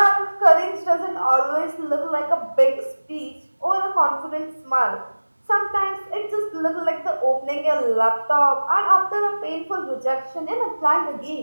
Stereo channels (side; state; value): both; inverted; correlation -1.00